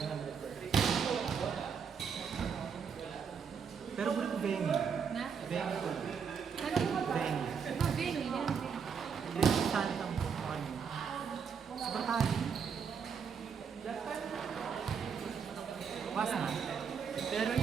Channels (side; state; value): left; quieter; 6.6 dB